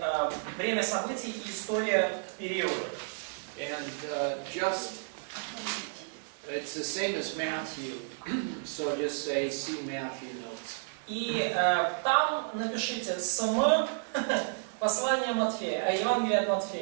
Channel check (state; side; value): silent; left; 57 dB below the other